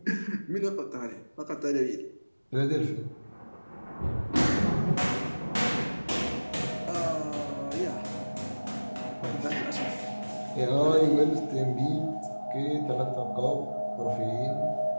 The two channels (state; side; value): inverted; both; correlation -1.00